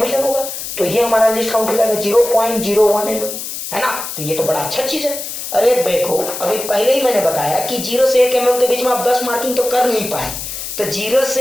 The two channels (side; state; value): left; noise; hiss, 7 dB below the sound